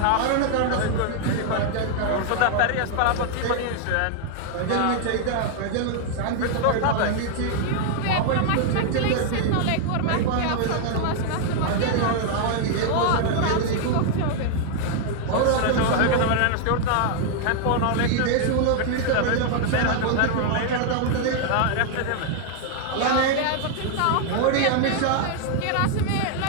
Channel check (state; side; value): different; both; correlation 0.00